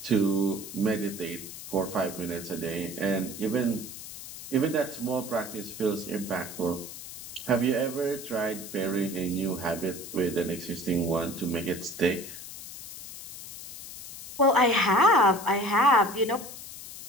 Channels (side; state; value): left; noise; hiss, 12 dB below the sound